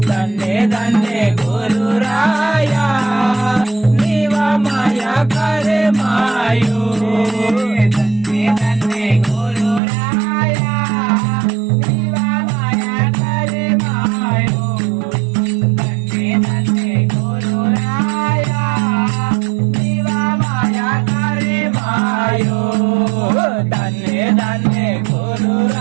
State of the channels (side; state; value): left; drops out; at 9.8 s